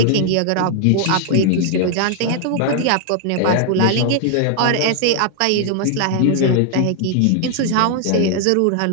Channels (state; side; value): different; both; correlation 0.00